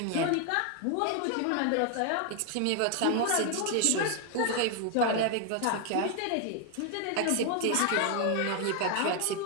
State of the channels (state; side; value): different; both; correlation 0.01